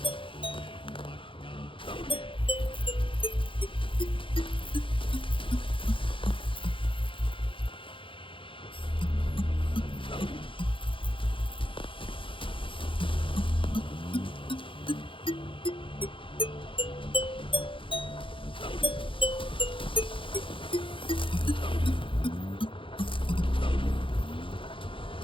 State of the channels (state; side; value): late; right; 0.25 ms